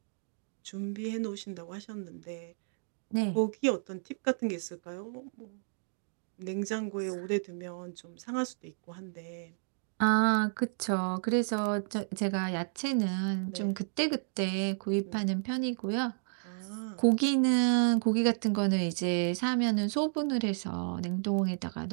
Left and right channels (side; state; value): left; silent; digital silence